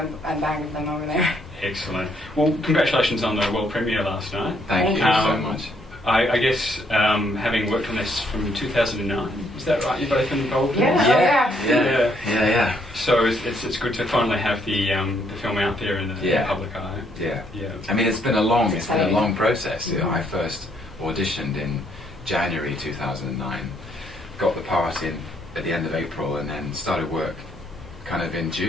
bag of them over there. Excellent. Well, congratulations on the world premiere last night. Thank you so much. I guess having worked on this from 2009, is that right? You've both been involved in Yeah. this? Yeah. So it's good to finally have the film out there in the public eye. Yeah. Yeah. I mean, it's been a long process. Mm-hmm. I first auditioned in January 2009, got the part in at the end of April, and then started work kind of in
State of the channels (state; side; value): normal; both; correlation 0.70